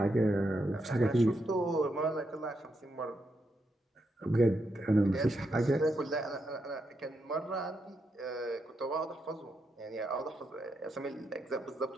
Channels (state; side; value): normal; both; correlation 0.82